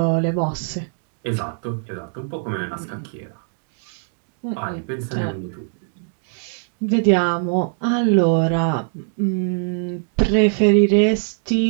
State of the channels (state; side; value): silent; left; digital silence